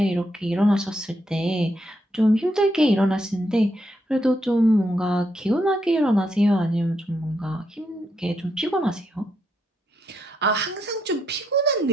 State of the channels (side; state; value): both; normal; correlation 0.79